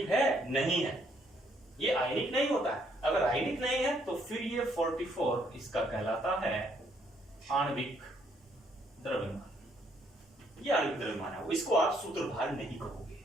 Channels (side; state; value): both; normal; correlation 0.69